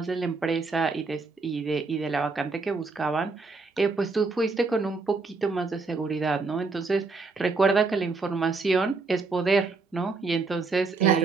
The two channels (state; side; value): quieter; left; 4.0 dB